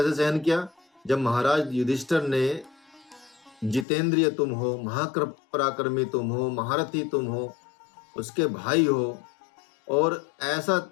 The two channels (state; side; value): drops out; right; at 3.9 s